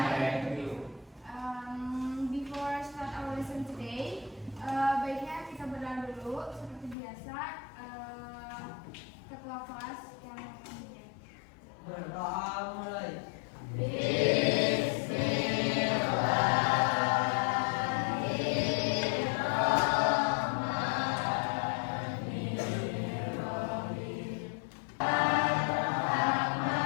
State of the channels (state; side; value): drops out; right; at 7.0 s